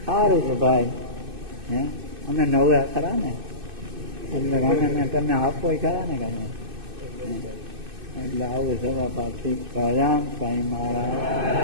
સારું છે ભાઈ. અમે નવ્યા ખરા ને, એટલે અમે તમને આપો ખરા ને કાંઈ. એટલે આવું સભા પાછી પ્રજામ સાંઈ મહારાજ.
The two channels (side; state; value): left; late; 2.6 ms